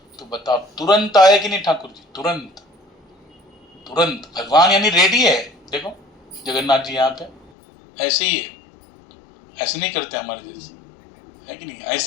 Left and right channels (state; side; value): drops out; right; at 7.5 s